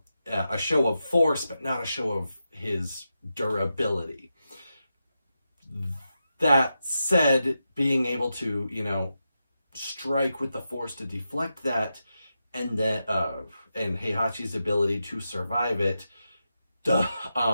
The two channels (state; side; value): inverted; both; correlation -0.88